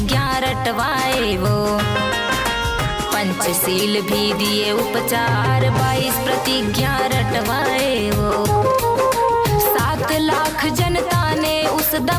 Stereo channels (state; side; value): identical; both; correlation 1.00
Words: रटवाए वो। पंचशील भी दिए उपचार, 22 प्रतिज्ञा रटवाए वो। 7 लाख जनता ने उस